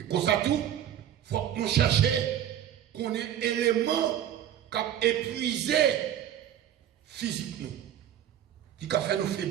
pour ça tout, il faut que nous cherchions qu'on ait un élément qui a épuisé physiquement, qui a fait nous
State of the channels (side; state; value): left; quieter; 10.7 dB